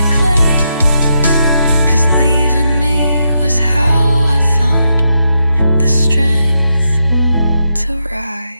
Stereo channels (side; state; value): both; inverted; correlation -0.83